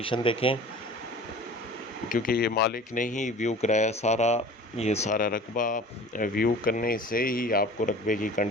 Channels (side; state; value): both; normal; correlation 0.42